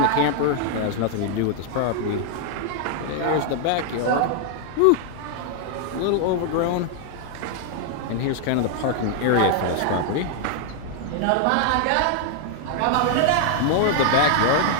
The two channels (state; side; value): different; both; correlation 0.00